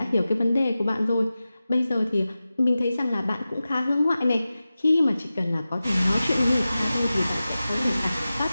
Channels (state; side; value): inverted; both; correlation -0.95